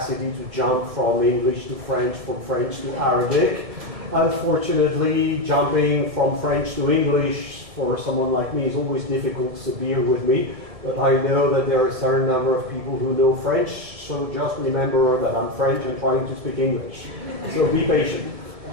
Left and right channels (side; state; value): left; late; 1.7 ms